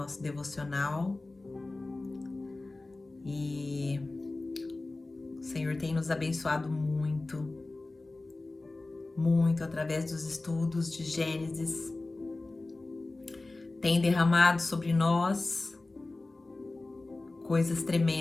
devocional e o Senhor tem nos abençoado muito, muito através dos estudos de Gênesis, tem derramado sobre nós coisas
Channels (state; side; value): quieter; right; 3.1 dB